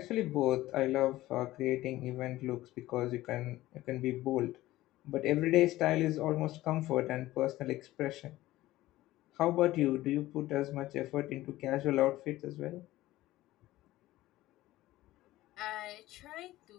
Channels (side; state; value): right; quieter; 16.5 dB